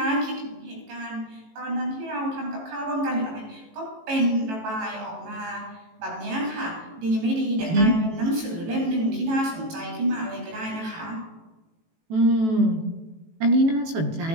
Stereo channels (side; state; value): left; late; 18 ms